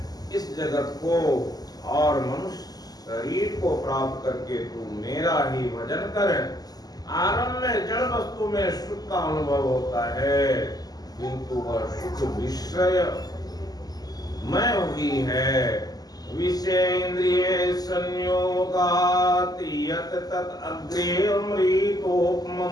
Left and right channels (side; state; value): right; late; 0.19 ms